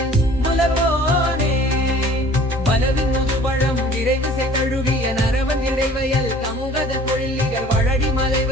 முலவோனே பலவின் முதுபழம் விரைவு செய்தழுகிய நரவன் இடைவயல் கமுகத பொழிலிகள் வழடி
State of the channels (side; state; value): both; normal; correlation 0.49